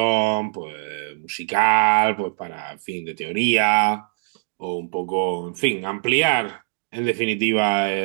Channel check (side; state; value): left; silent; digital silence